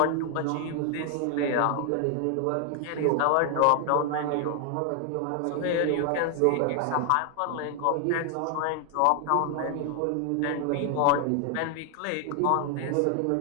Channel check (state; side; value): different; both; correlation 0.00